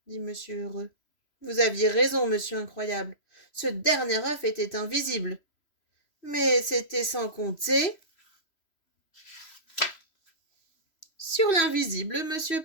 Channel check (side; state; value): right; late; 3.0 ms